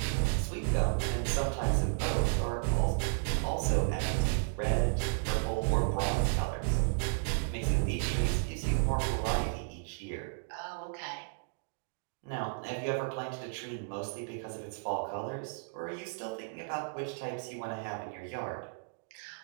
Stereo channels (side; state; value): left; silent; digital silence